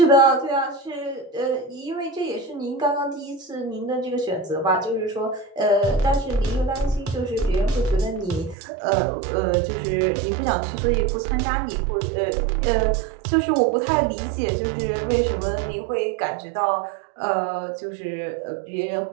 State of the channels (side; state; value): left; drops out; at 8.6 s